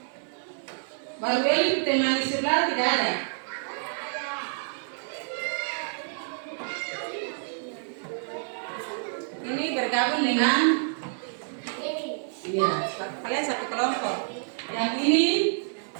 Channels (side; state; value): left; silent; digital silence